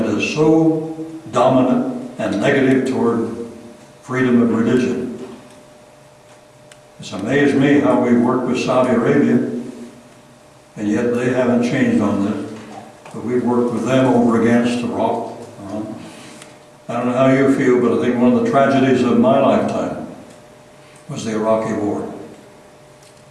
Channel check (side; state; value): both; identical; correlation 1.00